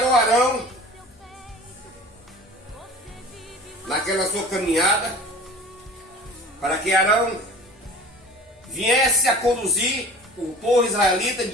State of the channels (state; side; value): normal; both; correlation 0.41